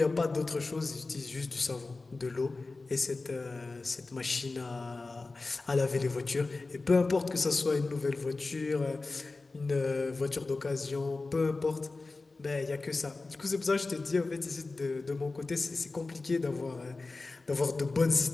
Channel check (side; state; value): right; quieter; 3.6 dB